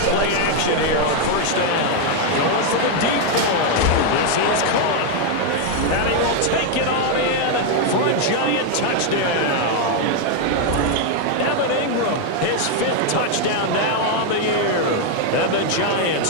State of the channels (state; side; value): different; both; correlation 0.01